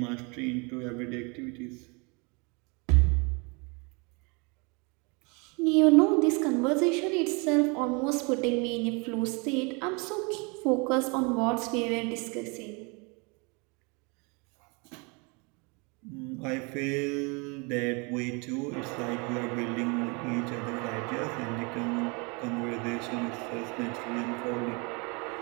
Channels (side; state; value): left; quieter; 30.9 dB